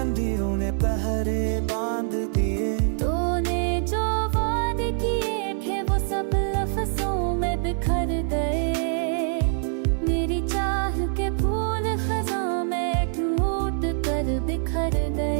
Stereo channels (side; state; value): left; silent; 62 dB below the other